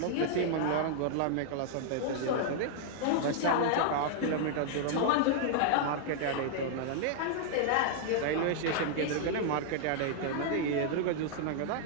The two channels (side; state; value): both; different; correlation -0.01